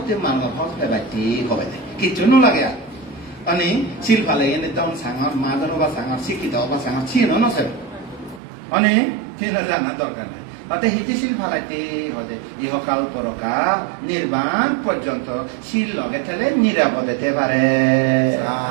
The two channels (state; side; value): drops out; left; at 8.4 s